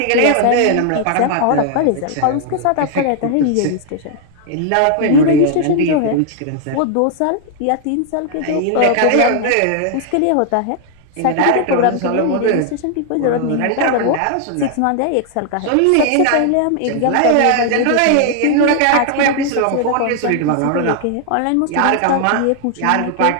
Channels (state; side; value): different; both; correlation 0.00